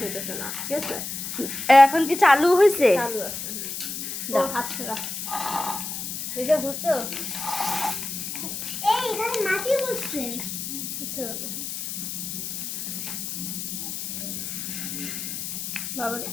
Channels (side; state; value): left; noise; hiss, 5 dB below the sound